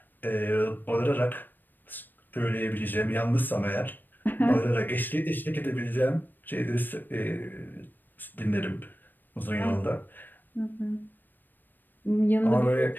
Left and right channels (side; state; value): right; late; 0.091 ms